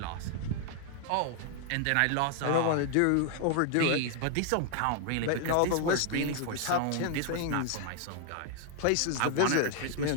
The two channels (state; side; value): different; both; correlation 0.00